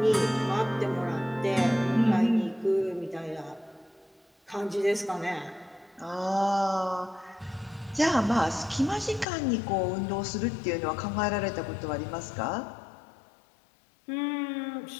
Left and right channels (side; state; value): right; drops out; at 9.2 s